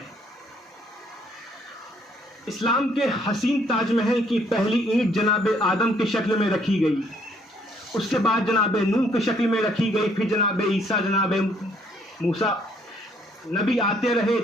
اسلام کے حسین تاج محل کی پہلی اینٹ جناب آدم کی شکل میں رکھی گئی، اس کے بعد جناب نوح کی شکل میں رکھی گئی، پھر جناب عیسیٰ، جناب موسیٰ نبی آتے رہے،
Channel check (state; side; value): normal; both; correlation 0.66